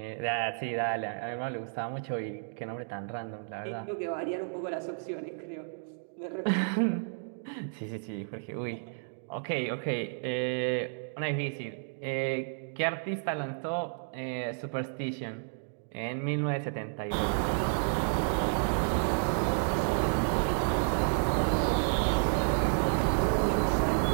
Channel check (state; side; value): silent; left; digital silence